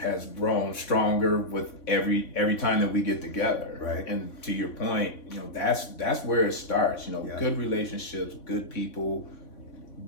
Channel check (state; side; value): late; right; 3.5 ms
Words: grown stronger with every time that we get together. Right. And to your point, that's where it starts. Good relationships, good people,